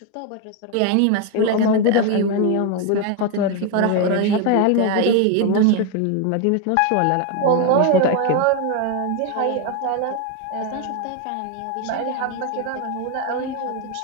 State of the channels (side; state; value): both; different; correlation 0.01